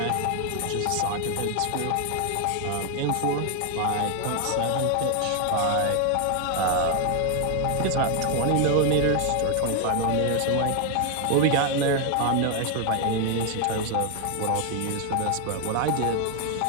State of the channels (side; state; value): both; different; correlation 0.00